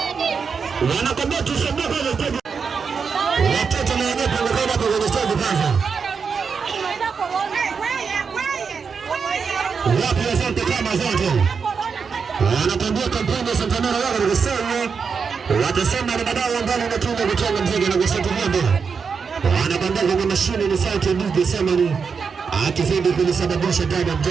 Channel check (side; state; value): left; quieter; 5.7 dB